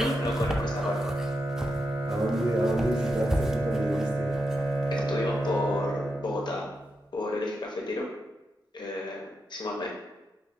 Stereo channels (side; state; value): both; normal; correlation 0.86